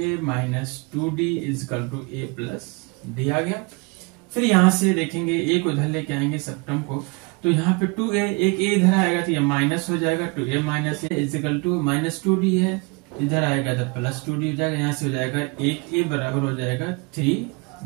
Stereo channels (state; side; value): quieter; left; 29.2 dB